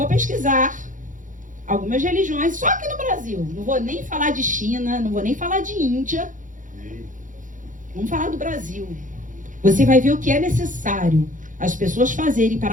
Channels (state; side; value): late; left; 0.38 ms